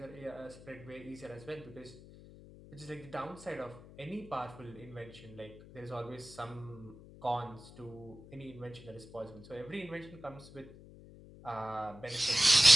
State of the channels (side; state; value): left; noise; hum, 18 dB below the sound